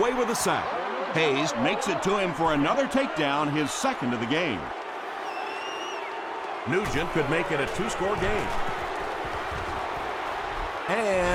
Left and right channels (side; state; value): both; identical; correlation 1.00